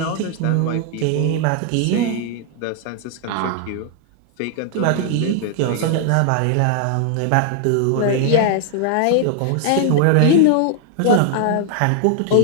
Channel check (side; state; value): both; different; correlation 0.00